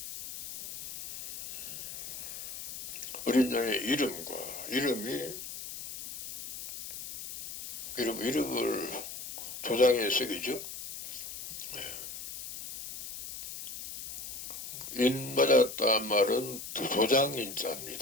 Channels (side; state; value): left; noise; hiss, 9 dB below the sound